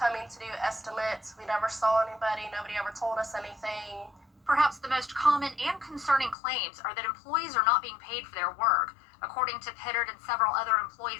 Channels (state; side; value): drops out; right; at 6.4 s